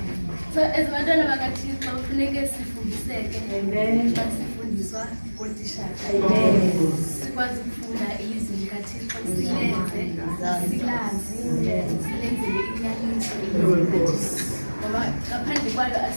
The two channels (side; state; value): both; inverted; correlation -1.00